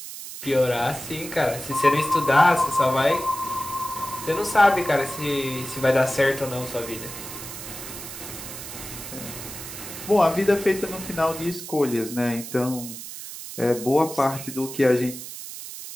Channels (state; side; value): noise; right; hiss, 11 dB below the sound